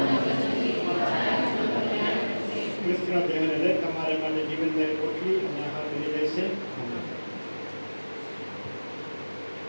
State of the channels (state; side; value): inverted; both; correlation -1.00